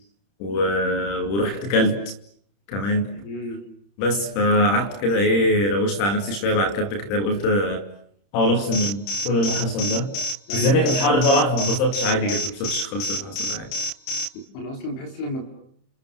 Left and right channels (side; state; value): right; late; 30 ms